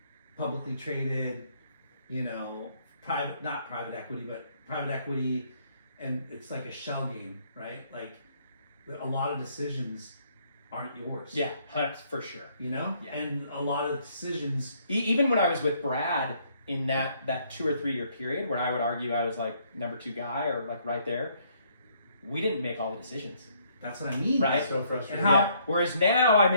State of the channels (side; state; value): both; inverted; correlation -0.67